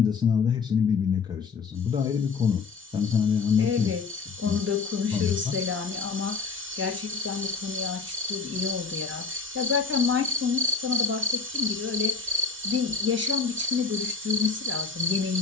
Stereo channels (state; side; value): quieter; right; 4.9 dB